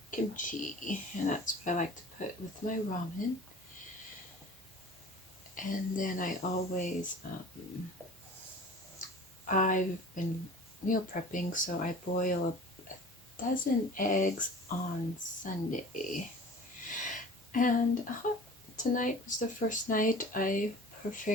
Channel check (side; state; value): both; normal; correlation 0.42